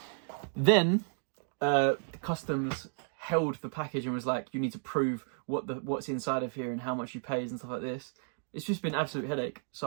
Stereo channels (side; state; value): left; silent; 56 dB below the other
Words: Then the customs held the package and was like, you need to prove what's inside of here and how much you paid and stuff like this. It's just been an absolute headache.